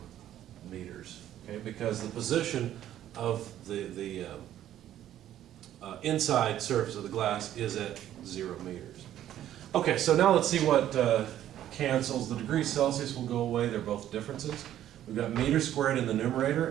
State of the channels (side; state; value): left; quieter; 11.9 dB